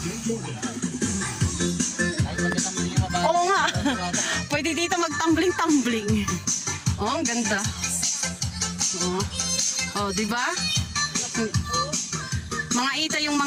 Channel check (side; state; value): both; identical; correlation 1.00